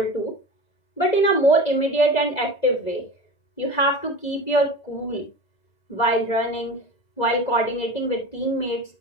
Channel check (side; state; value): right; late; 1.9 ms